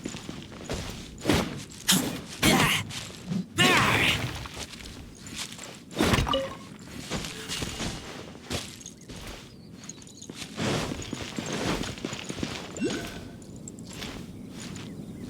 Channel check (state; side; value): identical; both; correlation 1.00